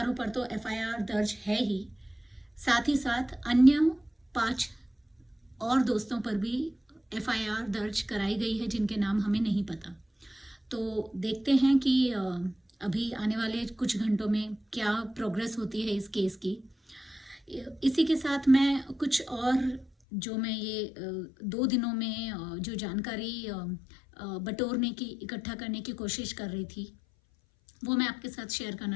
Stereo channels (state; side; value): drops out; right; at 19.9 s